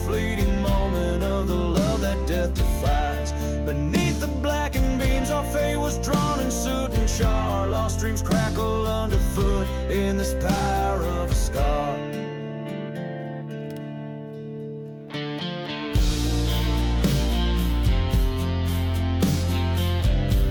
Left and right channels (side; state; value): both; identical; correlation 1.00